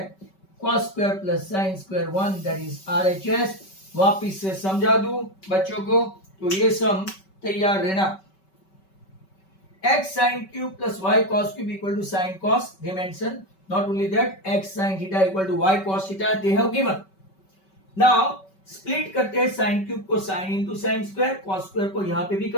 cos square plus sin square 1, that is RHS। वापिस से समझा दूं बच्चों को, तो ये सम तैयार रहना, x sin cube plus y cos cube equal to sin cos, they mention, not only that x sin theta equal to y cos theta they have given। now split करते हैं साइन क्यूब को sine into sine square, cos square को यहां पे भी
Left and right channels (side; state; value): right; late; 5.2 ms